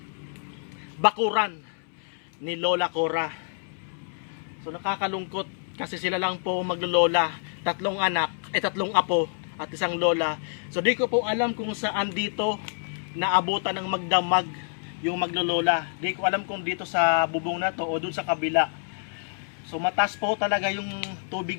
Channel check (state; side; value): silent; right; 60 dB below the other